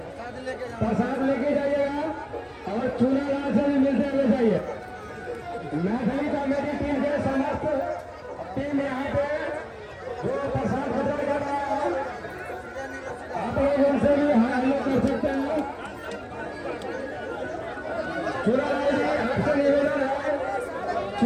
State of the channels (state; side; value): identical; both; correlation 1.00